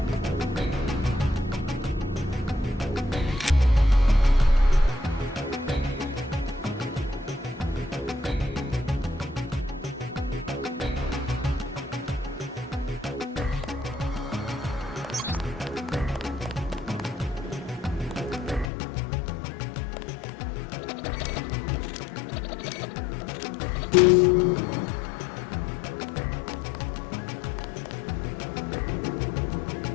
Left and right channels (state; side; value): drops out; right; at 18.7 s